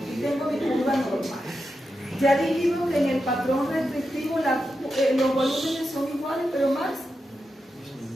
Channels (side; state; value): both; normal; correlation 0.88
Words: Aquí tengo mi curva normal. Ya dijimos que en el patrón restrictivo los volúmenes son iguales, pero más